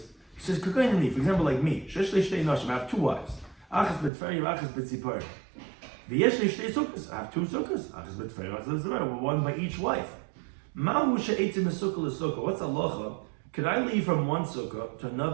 he says, for example, like me, I have 2 wives. Achas betferi, achas betzipor. V'yesh li shtei sukkahs. I have two sukkahs. Achas betferi, achas betzipor. One by each wife. Mahu she'etzim sukkah l'sukkah. What's halacha? Could I leave from one sukkah to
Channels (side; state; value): left; drops out; at 4.1 s